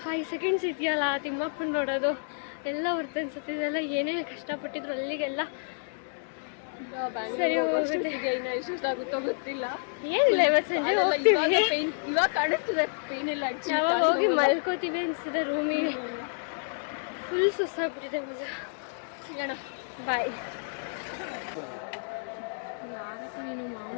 5 seconds ಇದೆಯಲ್ಲ ತಿಮ್ಮಪ್ಪನ ನೋಡೋದು ಎಲ್ಲ ಹೊರ್ತು ಅನ್ಸುತ್ತಿದೆಲ್ಲ. ಏನೇ ಕಷ್ಟಪಟ್ಟಿದ್ರು ಅಲ್ಲಿಗೆಲ್ಲ ಸರಿ ಹೋಗುತ್ತೆ. ಇನ್ನು ಎಷ್ಟಾಗುತ್ತೋ ಗೊತ್ತಿಲ್ಲ. ಏನಿಲ್ಲ, ಇವತ್ತು ಸಂಜೆ ಹೋಗ್ತೀವಿ. ಪೇನ್ ಇವಾಗ ಕಾಣಿಸ್ತದೆ, ಪೇನ್ ಇಲ್ಲ. ಯಾವಾಗ ಹೋಗಿ ಮಲ್ಕೋತೀವಿ ಅನಿಸ್ತದೆ ರೂಮಿಗೆ. ಫುಲ್ ಸುಸ್ತಾಗ್ಬಿಟ್ಟಿದೆ ಮಜಾ. ಸಿಗೋಣ, ಬಾಯ್. ನೀನು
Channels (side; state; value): right; silent; 58 dB below the other